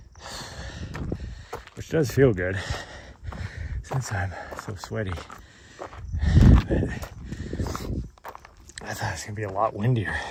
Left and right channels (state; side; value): identical; both; correlation 1.00